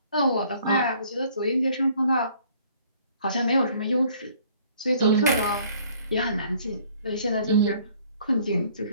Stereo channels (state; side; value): inverted; both; correlation -0.59